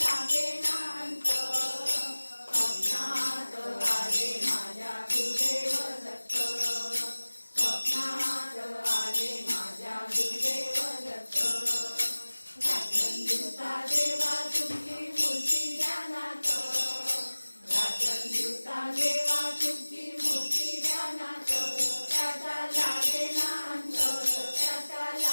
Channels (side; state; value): both; inverted; correlation -1.00